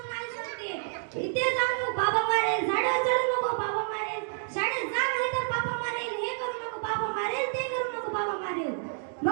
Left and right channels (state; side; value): silent; left; digital silence